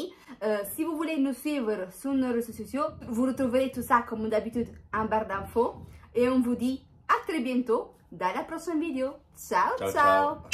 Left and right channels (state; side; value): identical; both; correlation 1.00